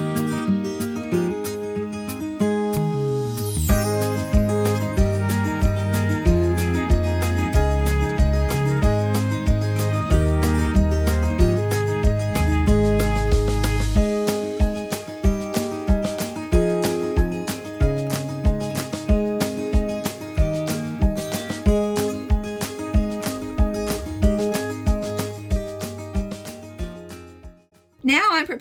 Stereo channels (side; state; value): both; identical; correlation 1.00